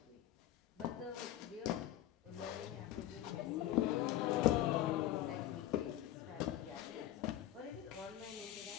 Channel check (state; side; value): quieter; right; 13.3 dB